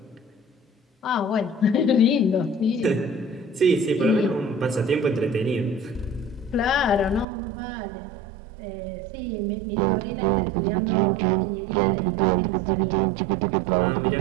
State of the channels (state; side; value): drops out; left; at 7.2 s